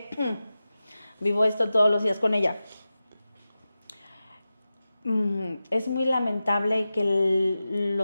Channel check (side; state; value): both; inverted; correlation -0.94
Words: vivo esto todos los días con ella. Es muy lamentable que